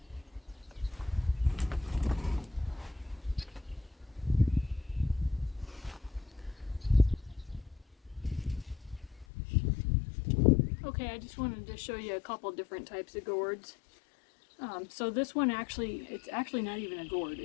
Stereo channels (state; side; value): drops out; right; at 9.2 s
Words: Okay, I just wanted to show you a couple different types of gourds. So this one it's actually not even a gourd,